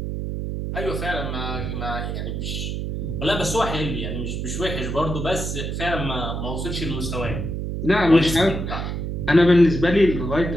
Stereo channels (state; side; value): noise; right; hum, 3 dB below the sound